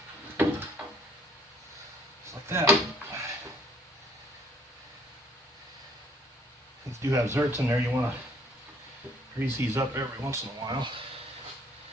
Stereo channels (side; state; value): both; normal; correlation 0.61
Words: like that. These do have zerks in there. You want to grease these up every once in a while.